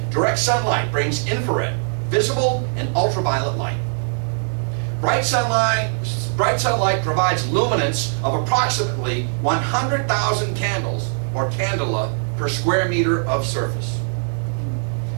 Direct sunlight brings infrared, visible, and ultraviolet light. Bright sunlight provides luminance of approximately 100,000 candles or candela per square meter of surface.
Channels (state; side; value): silent; left; digital silence